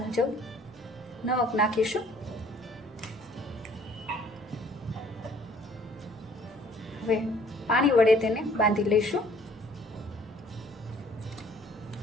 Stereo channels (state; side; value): normal; both; correlation 0.57